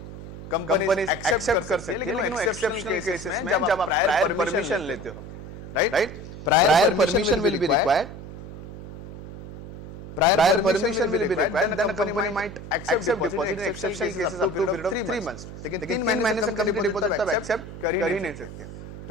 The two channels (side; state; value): right; noise; hum, 12 dB below the sound